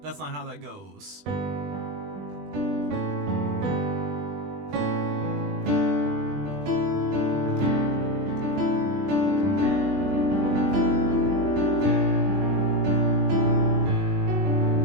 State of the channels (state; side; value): late; left; 20 ms